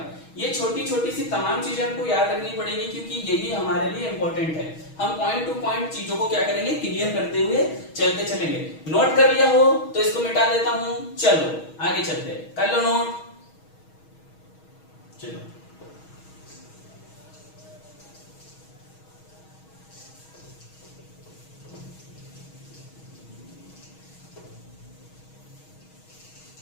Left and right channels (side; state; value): right; late; 6.3 ms